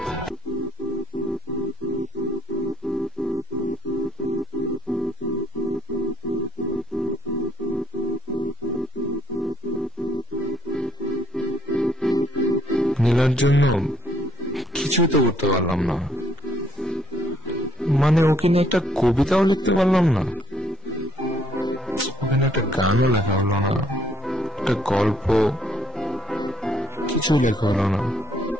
নীলার জন্য কিছুই তো করতে পারলাম না, মানে ওকে নিয়ে একটা কবিতাও লিখতে পারলাম না, ওখানে একটা গানও লেখা হলো না, একটা গল্প কিছু লেখা হলো না।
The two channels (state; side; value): normal; both; correlation 0.65